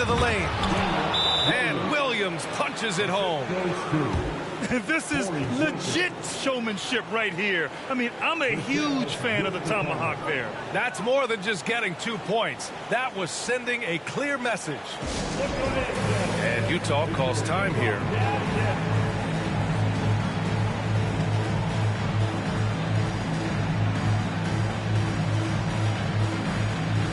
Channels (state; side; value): identical; both; correlation 1.00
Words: the lane. And Williams punches it home. This is legit showmanship right here. I mean, I'm a huge fan of the tomahawk there. That's more than just getting 2 points. That was sending a clear message. And Utah calls time here.